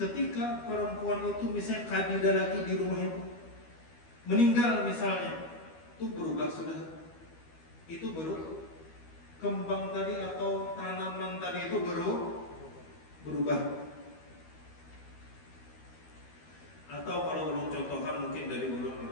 perempuan itu misalnya kadida lagi di rumah itu, meninggal misalnya, itu berubah sudah. Itu baru kembang tadi atau tanaman tadi itu berubah. Atau kalau ulun contohkan mungkin dari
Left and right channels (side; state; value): right; late; 12 ms